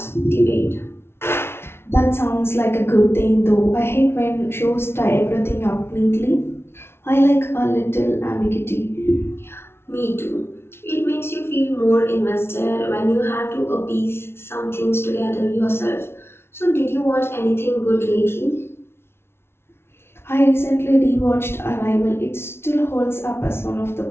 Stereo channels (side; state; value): right; late; 0.12 ms